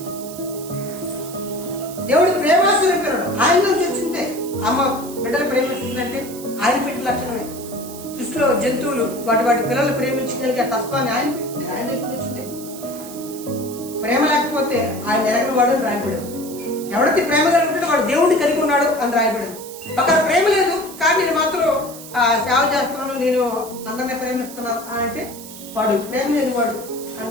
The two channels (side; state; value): right; noise; hiss, 14 dB below the sound